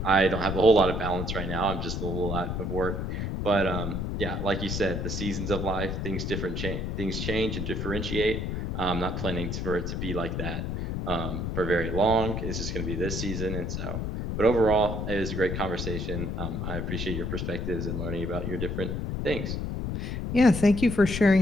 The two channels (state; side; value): noise; left; rumble, 2 dB below the sound